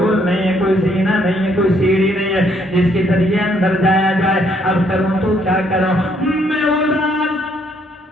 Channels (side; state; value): both; normal; correlation 0.68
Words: نہیں ہے, کوئی زینہ نہیں ہے, کوئی سیڑھی نہیں ہے جس کے ذریعے اندر جایا جائے. اب کروں تو کیا کروں, میں اداس,